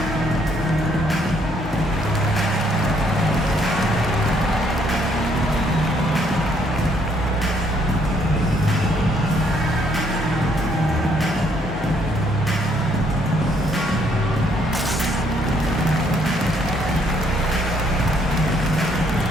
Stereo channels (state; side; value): normal; both; correlation 0.68